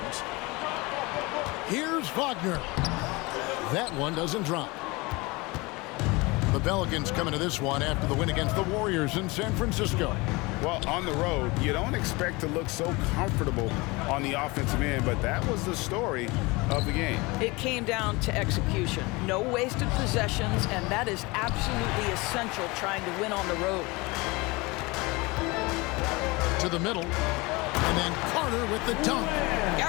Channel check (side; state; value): right; quieter; 24.4 dB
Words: Here's Wagner. That one doesn't drop. The Pelicans coming to this one after the win against the Warriors in San Francisco. Well, on the road, you don't expect to look so comfortable on the offensive end, but that was the story of the game. It came down to execution. No wasted possessions, and that is absolutely essential trying to win on the road. To the middle, and then Carter with the dunk.